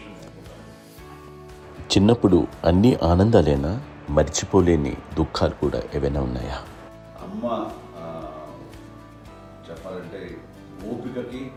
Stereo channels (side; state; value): both; identical; correlation 1.00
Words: అనుకుంటాను. చిన్నప్పుడు అన్ని ఆనందాలేనా, మర్చిపోలేని దుఃఖాలు కూడా ఏవైనా ఉన్నాయా? అమ్మ చెప్పాలంటే ఓపికకి,